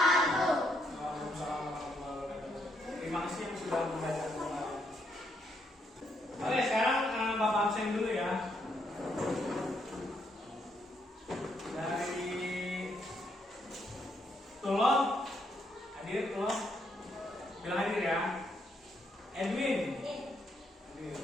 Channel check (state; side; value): normal; both; correlation 0.75